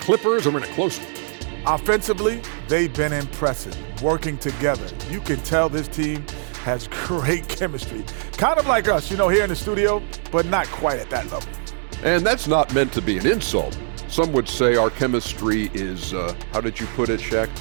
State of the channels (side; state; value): left; silent; 64 dB below the other